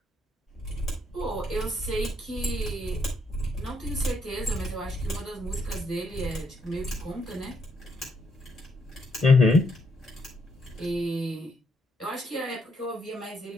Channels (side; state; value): both; normal; correlation 0.75